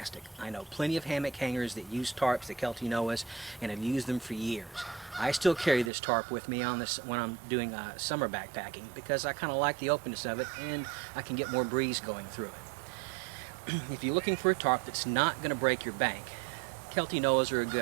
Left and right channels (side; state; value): left; drops out; at 5.9 s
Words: I know plenty of hammock hangers that use tarps, the Kelty Noahs, and have used them for years. I still carry this tarp with me on this when I'm doing summer backpacking because I kind of like the openness of it and I can get more breeze going through it. If you're looking for a tarp that's not going to break your bank, Kelty Noahs are a good